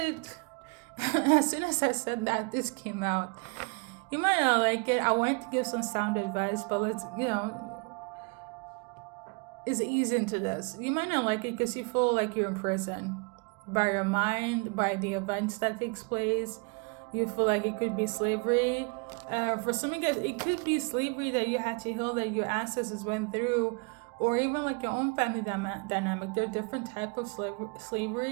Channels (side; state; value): left; quieter; 32.4 dB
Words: As soon as I said that, this came out. You might not like it. I wanted to give some sound advice, but let's, it's easy into this. You might not like it because you feel like you're in prison. By your mind, by the events that takes place. You feel like it could be slavery. For some of you guys, it could be slavery that you had to heal, that your ancestors went through, or even like your own family dynamic. There are different types of